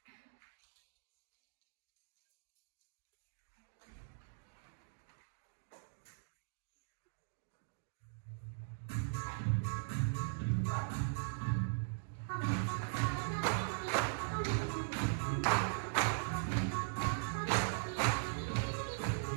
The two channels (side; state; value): left; silent; digital silence